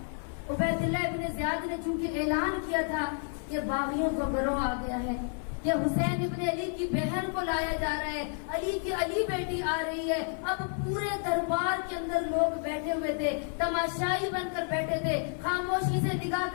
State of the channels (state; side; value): silent; right; 57 dB below the other